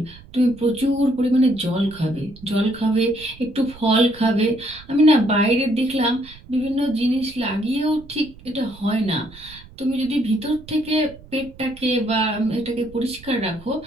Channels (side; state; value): right; noise; rumble, 21 dB below the sound